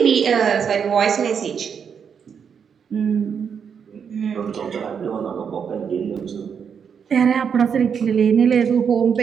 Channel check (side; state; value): left; quieter; 7.0 dB